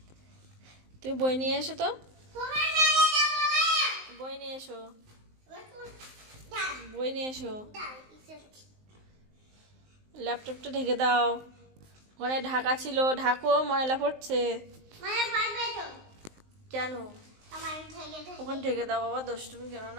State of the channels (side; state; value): left; late; 19 ms